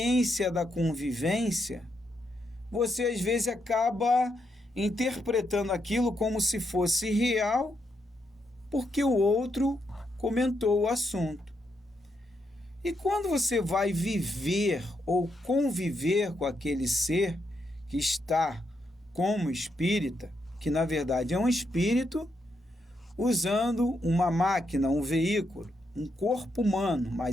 da convivência, você às vezes acaba interpretando aquilo como se fosse real, porque o outro comentou o assunto. E quando você vai viver ou conviver com aquele ser que está como espírita, que na verdade é um espírito, usando uma máquina, um veículo, um corpo humano,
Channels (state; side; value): normal; both; correlation 0.80